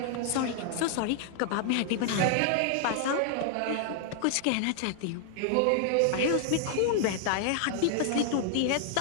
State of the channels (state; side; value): different; both; correlation 0.00